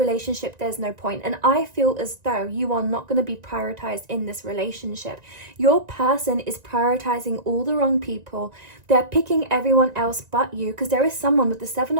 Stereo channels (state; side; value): late; left; 1.9 ms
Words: there's no point. And I feel as though you are not going to be prioritized in this relationship. Your person is prioritizing all the wrong people. They're picking everyone else but you, because there is someone with the Seven